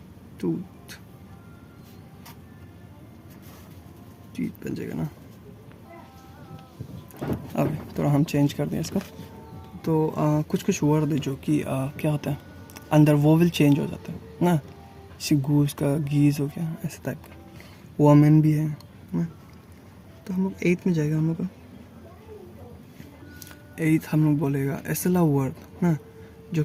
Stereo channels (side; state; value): both; identical; correlation 1.00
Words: टूथ, टीथ बन जाएगा ना। अब थोड़ा हम चेंज कर दें इसको। तो कुछ कुछ वर्ड है जो कि क्या होता है, अंदर वोवल चेंज हो जाता है ना, जैसे गूस का गीज हो गया, ऐसे टाइप का। वोमेन भी है ना। तो हम लोग 8th में जाएगा, हम लोग का 8th हम लोग बोलेगा ऐसा वर्ड ना जो